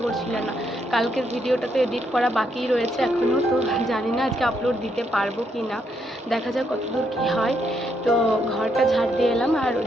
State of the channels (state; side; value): normal; both; correlation 0.76